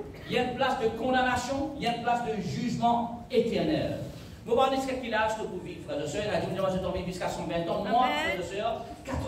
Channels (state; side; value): identical; both; correlation 1.00